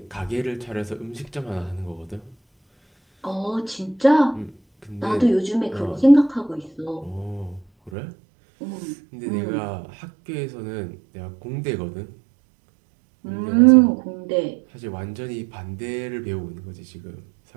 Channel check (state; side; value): drops out; left; at 7.9 s